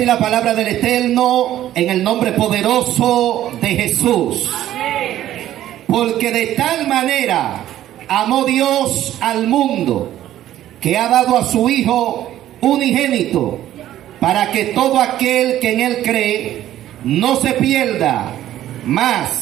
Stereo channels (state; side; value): quieter; left; 12.8 dB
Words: la palabra del Eterno, en el nombre poderoso de Jesús. Porque de tal manera amó Dios al mundo, que ha dado a su Hijo unigénito, para que todo aquel que en Él cree no se pierda,